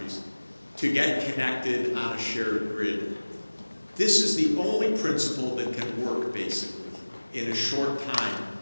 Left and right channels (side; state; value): both; inverted; correlation -1.00